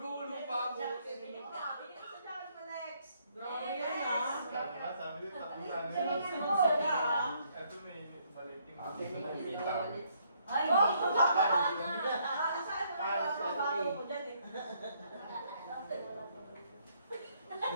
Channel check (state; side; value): inverted; both; correlation -0.70